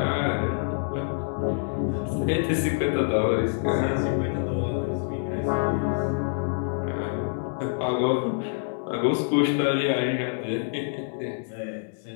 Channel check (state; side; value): silent; right; 61 dB below the other